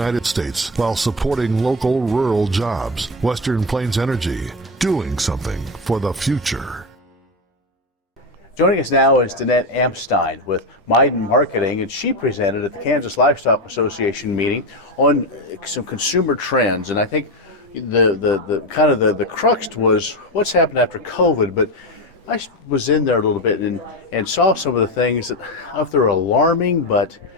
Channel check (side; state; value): both; normal; correlation 0.14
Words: States while supporting local rural jobs. Western Plains Energy, doing something for the future. Joining us now is Danette Amstein with Maiden Marketing, and she presented at the Kansas Livestock Association meeting on some consumer trends. And I think the crux was what's happened after COVID, but I was in there a little bit and saw some of the things that I don't know if they're alarming, but